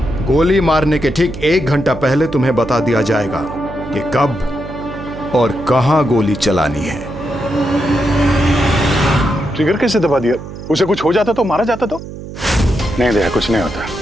गोली मारने के ठीक 1 घंटा पहले तुम्हें बता दिया जाएगा कि कब और कहां गोली चलानी है। ट्रिगर कैसे दबा दिया? उसे कुछ हो जाता तो, मारा जाता तो? नहीं दया, कुछ नहीं होता।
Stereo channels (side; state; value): right; noise; hum, 12 dB below the sound